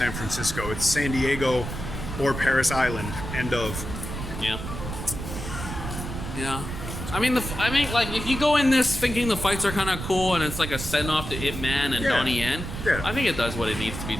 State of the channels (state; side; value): noise; right; rumble, 7 dB below the sound